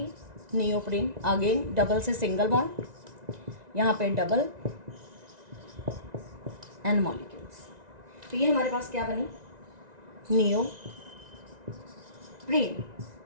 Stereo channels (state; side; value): late; left; 1.9 ms